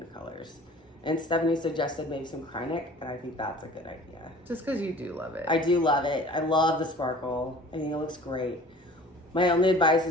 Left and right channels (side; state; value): both; normal; correlation 0.46